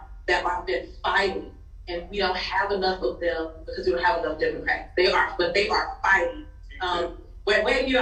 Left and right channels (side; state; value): both; identical; correlation 1.00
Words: that have been fighting, and we don't have enough of them because we don't have enough Democrats. They are fighting. Wave your